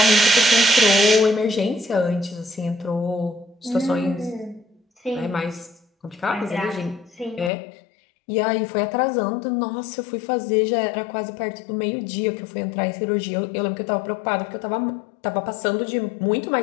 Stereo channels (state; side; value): drops out; right; at 7.5 s